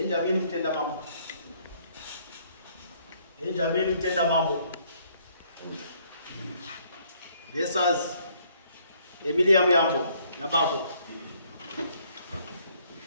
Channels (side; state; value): both; inverted; correlation -0.66